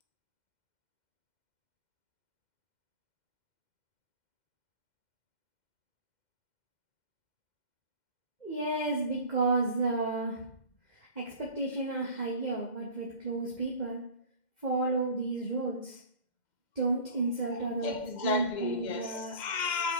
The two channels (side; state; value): right; late; 2.1 ms